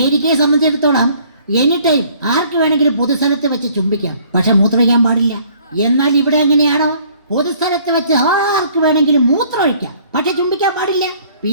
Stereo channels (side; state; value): both; inverted; correlation -0.58